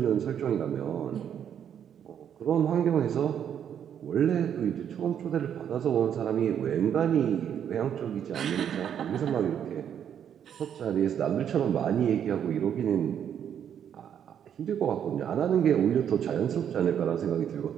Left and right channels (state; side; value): quieter; left; 8.9 dB